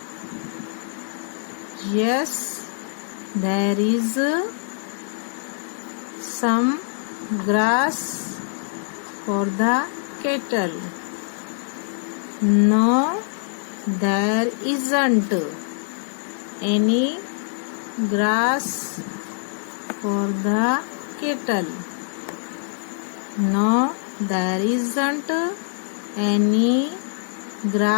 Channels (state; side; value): silent; right; digital silence